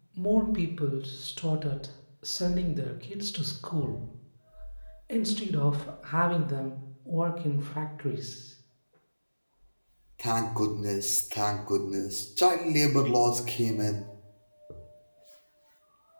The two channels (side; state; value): both; inverted; correlation -1.00